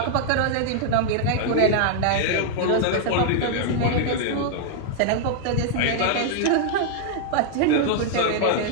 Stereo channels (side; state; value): both; different; correlation 0.00